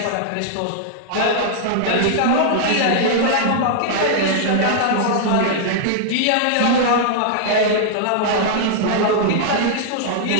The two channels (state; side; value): different; both; correlation -0.01